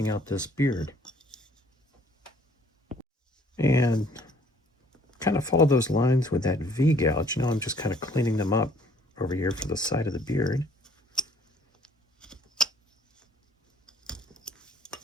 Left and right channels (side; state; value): both; normal; correlation 0.60